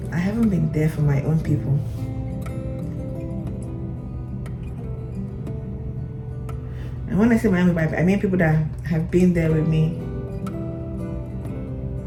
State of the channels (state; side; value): identical; both; correlation 1.00